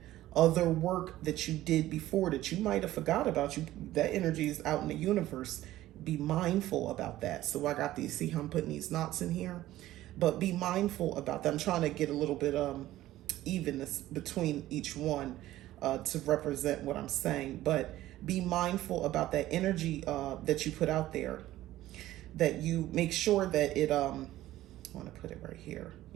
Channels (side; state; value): left; quieter; 15.0 dB